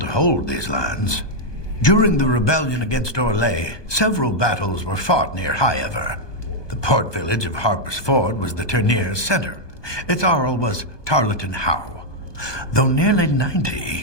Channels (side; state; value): right; late; 1.2 ms